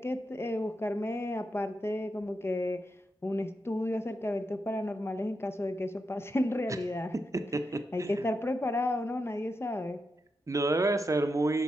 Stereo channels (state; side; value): normal; both; correlation 0.86